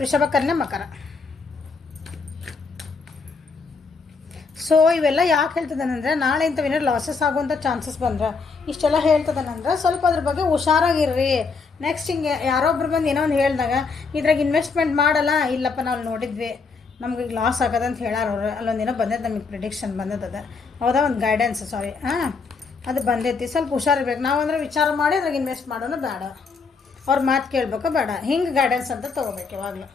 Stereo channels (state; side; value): quieter; right; 4.7 dB